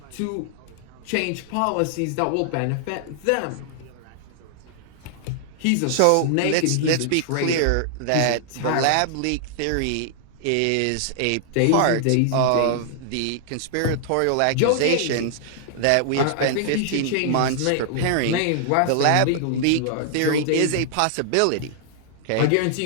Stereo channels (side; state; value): both; different; correlation -0.01